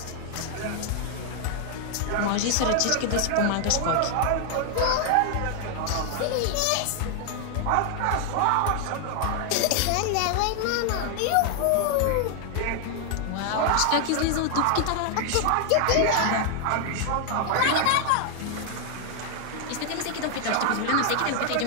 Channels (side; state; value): both; different; correlation 0.00